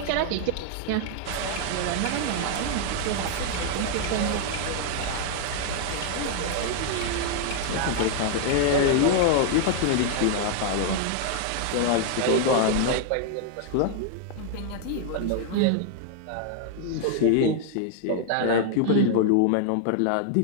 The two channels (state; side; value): different; both; correlation 0.00